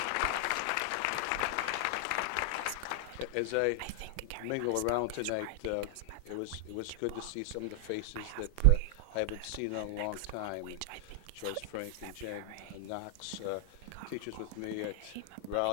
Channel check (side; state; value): both; different; correlation 0.00